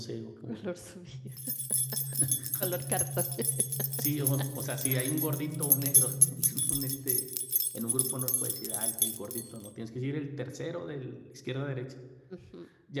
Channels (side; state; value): both; identical; correlation 1.00